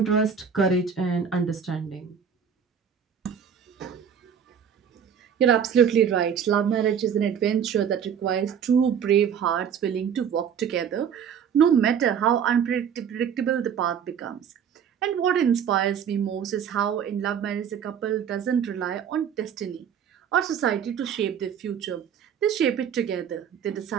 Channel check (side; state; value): left; quieter; 7.8 dB